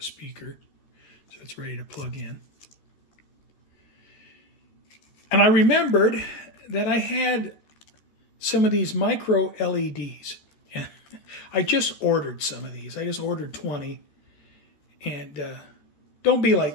speaker, so it's ready to plug in. And I remembered that I had some of these micro LEDs. I just ordered some of these. I just ordered 20. And don't be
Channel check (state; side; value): late; right; 13 ms